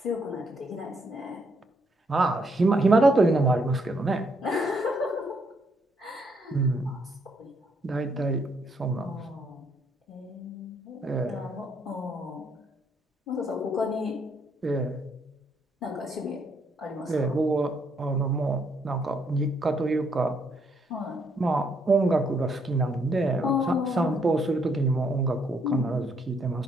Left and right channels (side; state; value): both; normal; correlation 0.72